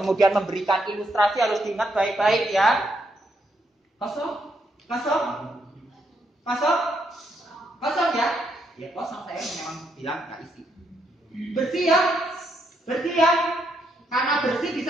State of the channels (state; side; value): normal; both; correlation 0.77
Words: memberikan ilustrasi harus diingat baik-baik ya. Kosong, kosong, kosong, kosong ya. Ya kosong, saya memang bilang nggak isi. Bersih ya, bersih ya. Karena bersih